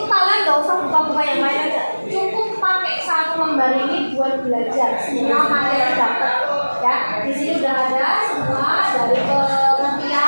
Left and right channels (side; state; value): both; inverted; correlation -1.00